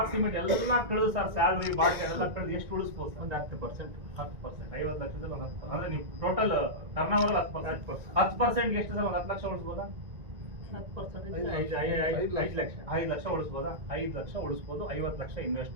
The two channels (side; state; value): left; late; 1.9 ms